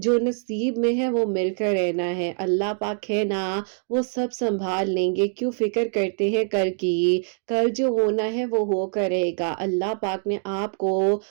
نصیب میں ہے وہ مل کر رہنا ہے، اللہ پاک ہے نا وہ سب سنبھال لیں گے، کیوں فکر کرتے ہیں کل کی؟ کل جو ہونا ہے وہ ہو کر رہے گا۔ اللہ پاک نے آپ کو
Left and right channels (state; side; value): silent; left; digital silence